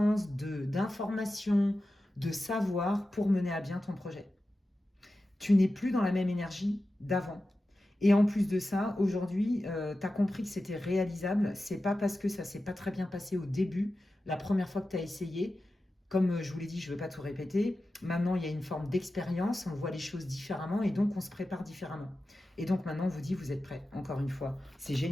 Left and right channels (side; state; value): both; normal; correlation 0.93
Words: d'informations, de savoir pour mener à bien ton projet. Tu n'es plus dans la même énergie d'avant. Et en plus de ça, aujourd'hui, tu as compris que c'était réalisable. C'est pas parce que ça s'est pas très bien passé au début, la première fois que tu as essayé. Comme je vous l'ai dit, je ne veux pas tout répéter. Maintenant, il y a une forme d'expérience, on voit les choses différemment et donc on se prépare différemment. Et donc maintenant, on vous dit, vous êtes prêts, encore une fois. C'est